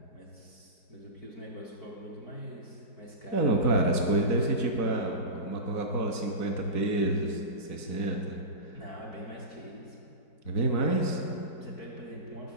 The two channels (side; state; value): right; late; 4.6 ms